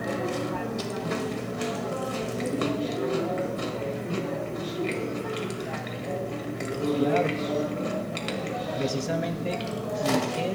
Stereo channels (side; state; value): both; identical; correlation 1.00